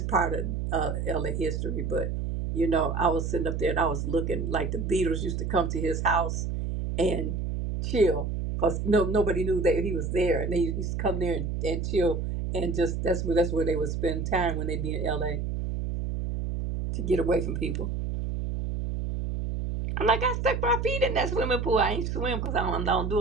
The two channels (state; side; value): noise; right; hum, 2 dB below the sound